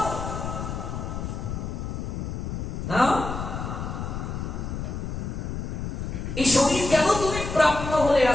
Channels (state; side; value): noise; left; rumble, 5 dB below the sound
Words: এই শরীর কেন তুমি প্রাপ্ত হলে?